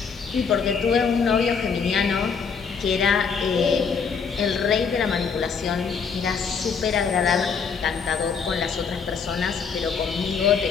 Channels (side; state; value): right; quieter; 5.9 dB